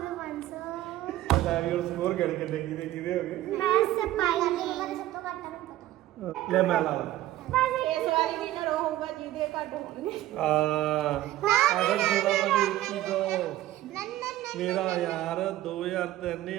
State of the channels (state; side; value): quieter; left; 14.7 dB